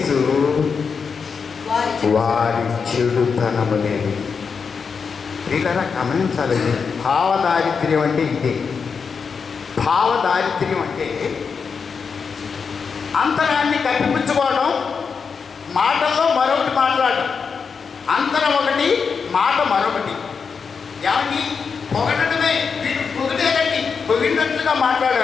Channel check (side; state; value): right; quieter; 5.7 dB